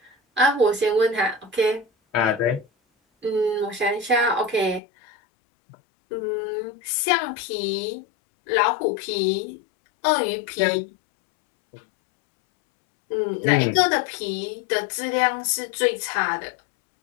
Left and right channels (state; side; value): drops out; right; at 4.8 s